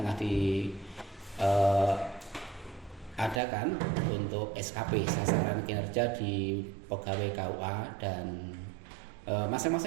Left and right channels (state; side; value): drops out; left; at 3.4 s